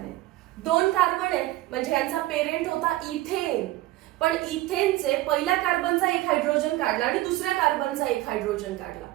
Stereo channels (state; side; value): quieter; left; 17.0 dB